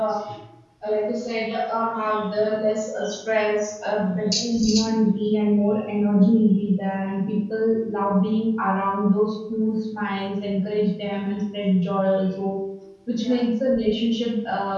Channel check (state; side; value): identical; both; correlation 1.00